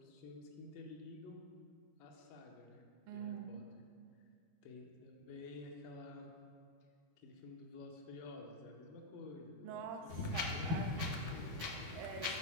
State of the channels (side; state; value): left; late; 12 ms